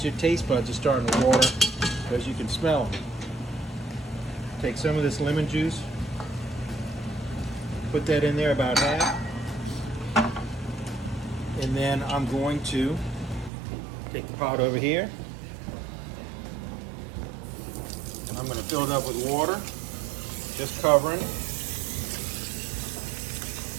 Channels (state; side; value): drops out; left; at 13.5 s